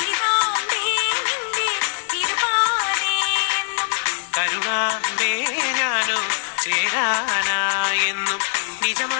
നിന്റെ തിരുപാതയെന്നും കരുണാമ്പേ ഞാനോ ചേരാനായെന്നും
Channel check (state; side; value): silent; right; digital silence